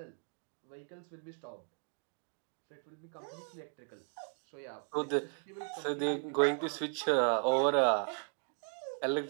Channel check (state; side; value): silent; left; 53 dB below the other